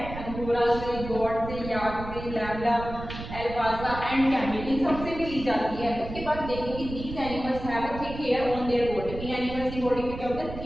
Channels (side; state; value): right; noise; rumble, 10 dB below the sound